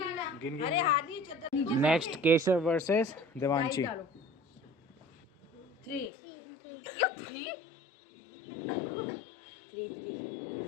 गिनना। अरे हाथ नहीं चद्दर। Next Keshav versus Devanshi. 3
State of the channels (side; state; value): right; drops out; at 6.1 s